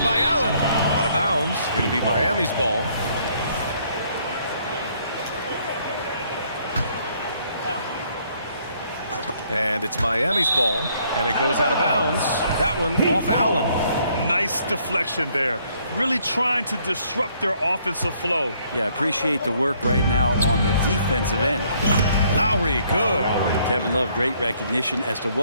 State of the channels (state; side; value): inverted; both; correlation -0.66